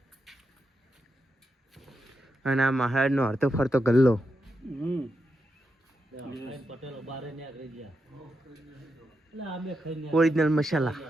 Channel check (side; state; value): both; normal; correlation 0.85